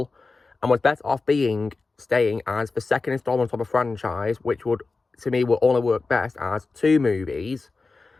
and was better off staying as the second installment of a franchise, which would only work best as two movies.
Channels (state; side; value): quieter; right; 3.9 dB